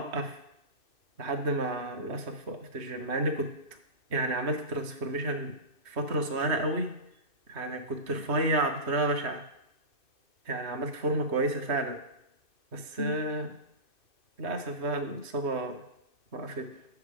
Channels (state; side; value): late; left; 2.6 ms